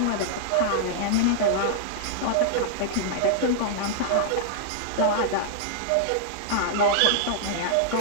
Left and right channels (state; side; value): different; both; correlation -0.01